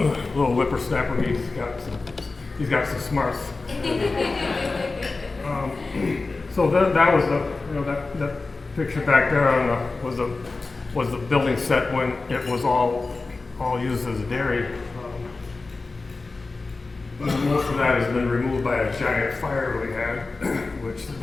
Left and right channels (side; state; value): right; quieter; 3.7 dB